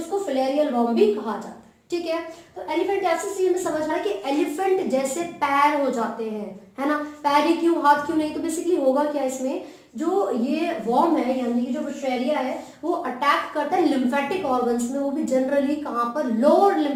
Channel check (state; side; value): identical; both; correlation 1.00